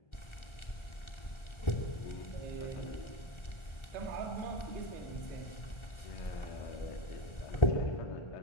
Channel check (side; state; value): right; late; 1.3 ms